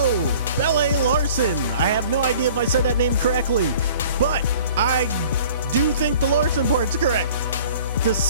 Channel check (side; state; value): both; inverted; correlation -0.49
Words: Pelle Larrson. I have no idea if I said that name correctly, but I do think the Larrson part's correct. The